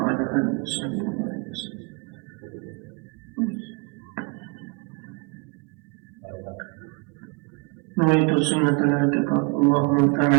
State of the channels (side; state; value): left; quieter; 32.5 dB